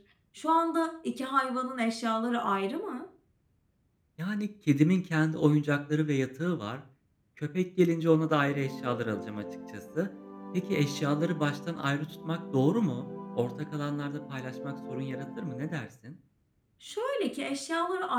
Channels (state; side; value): identical; both; correlation 1.00